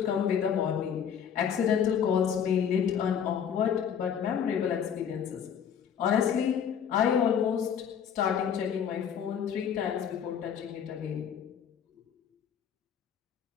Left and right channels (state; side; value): quieter; right; 8.0 dB